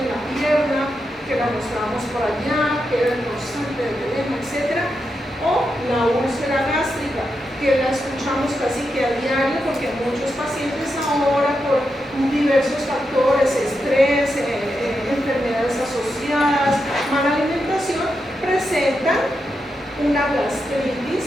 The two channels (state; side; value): normal; both; correlation 0.86